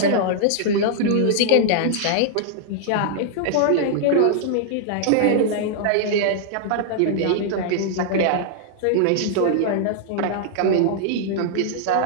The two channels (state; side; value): different; both; correlation -0.01